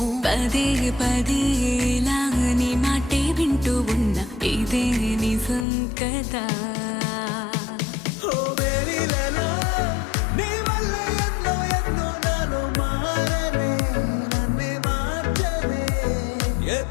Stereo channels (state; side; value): drops out; right; at 5.7 s